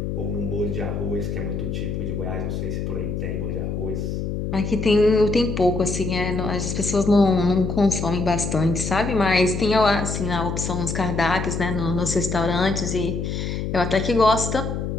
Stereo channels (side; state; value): left; noise; hum, 3 dB below the sound